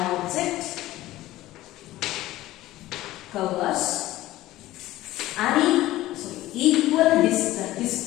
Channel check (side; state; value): right; quieter; 16.2 dB